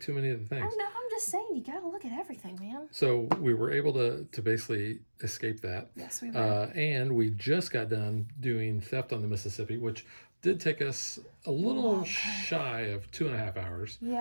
many of the things. I know, I'm just saying, you gotta look at everything, man. So we were able to basically escape that. Yes, we were. And we just got done doing Theft on the Mississippi, which did take us a little shy of 2.5 hours.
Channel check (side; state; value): both; inverted; correlation -1.00